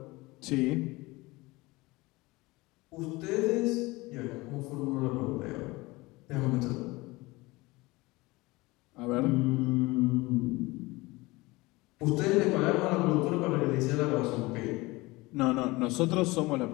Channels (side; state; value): right; quieter; 21.9 dB